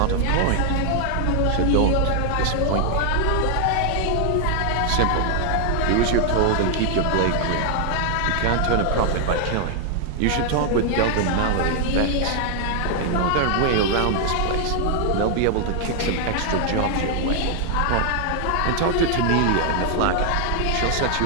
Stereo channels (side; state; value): both; different; correlation 0.00